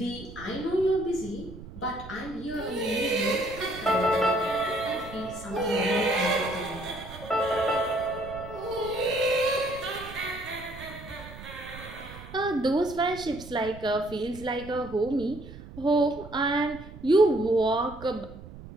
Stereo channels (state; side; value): noise; right; rumble, 15 dB below the sound